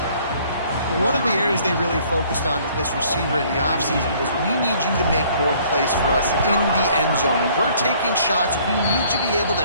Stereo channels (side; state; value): both; inverted; correlation -0.59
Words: One of the areas they really focused on with this receiver in the offseason was we need you to make more plays for us in the end zone. When we're taking shots, we need you to be able